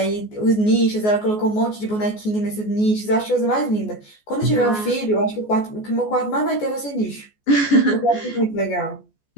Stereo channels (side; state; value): right; late; 14 ms